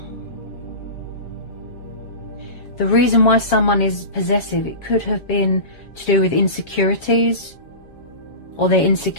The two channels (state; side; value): late; right; 7.3 ms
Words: the reason why someone is possessive, it could have been to do with insecurities, or they're